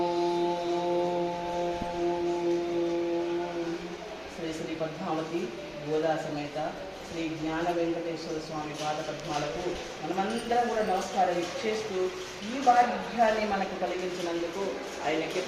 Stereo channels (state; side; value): identical; both; correlation 1.00